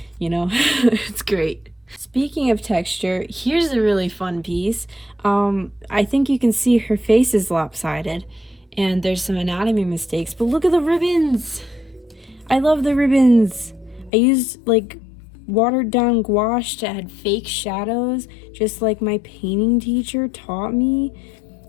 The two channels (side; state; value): right; drops out; at 14.1 s